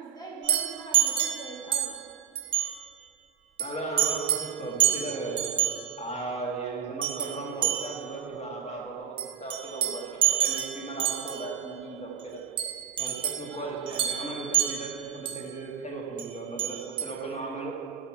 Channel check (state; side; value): quieter; left; 8.3 dB